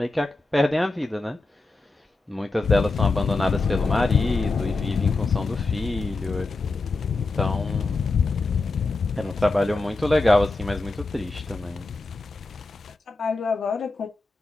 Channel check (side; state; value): right; quieter; 3.3 dB